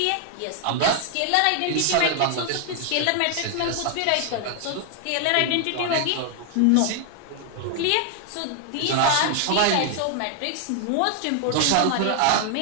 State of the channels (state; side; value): different; both; correlation 0.00